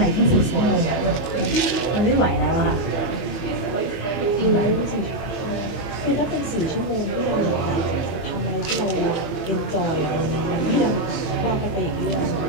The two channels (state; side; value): late; right; 24 ms